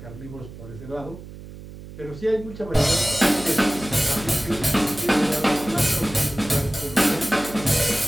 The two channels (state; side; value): noise; right; hum, 15 dB below the sound